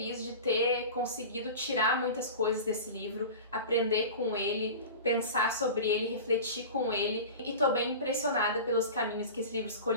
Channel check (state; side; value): inverted; both; correlation -0.33